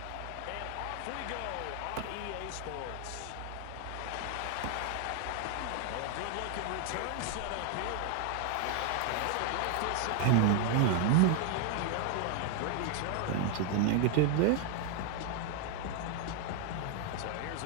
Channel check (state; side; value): different; both; correlation 0.00